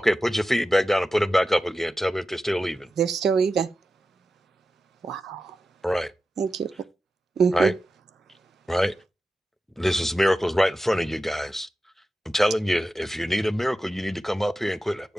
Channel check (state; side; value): normal; both; correlation 0.92